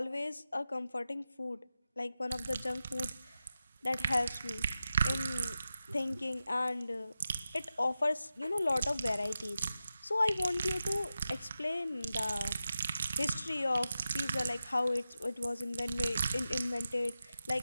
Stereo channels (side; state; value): both; inverted; correlation -0.91